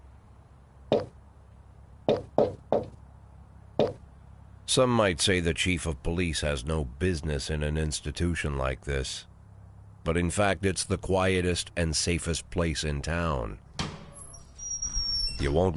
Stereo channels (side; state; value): both; identical; correlation 1.00